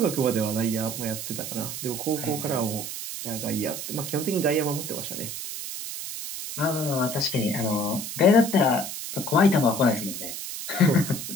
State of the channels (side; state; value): right; noise; hiss, 7 dB below the sound